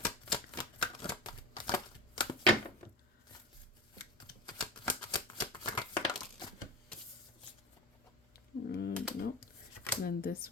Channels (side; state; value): both; normal; correlation 0.29